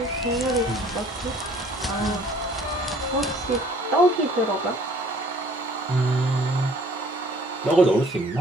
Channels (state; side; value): normal; both; correlation 0.55